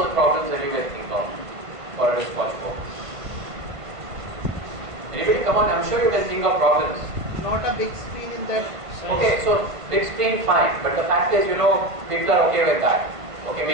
the problems that you can think of for a wristwatch phone. Anybody? Come on, I'm sure you can think of problems. Not a big screen in that. Okay, so big screen, fine. But the fact is, people are okay with that. Okay,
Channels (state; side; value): late; left; 1.5 ms